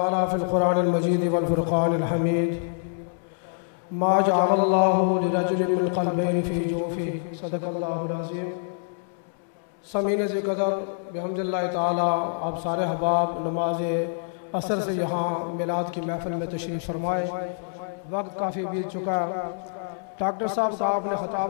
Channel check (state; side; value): silent; right; digital silence